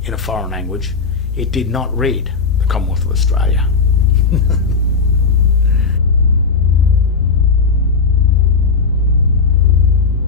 in a foreign language, it did not read the Commonwealth of Australia.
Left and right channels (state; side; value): quieter; right; 4.9 dB